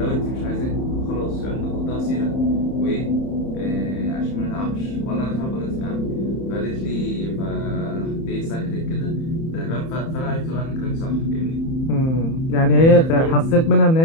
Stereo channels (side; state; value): right; late; 31 ms